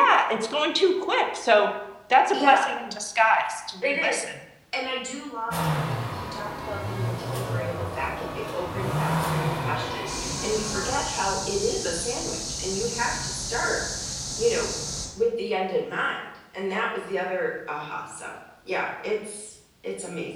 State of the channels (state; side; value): identical; both; correlation 1.00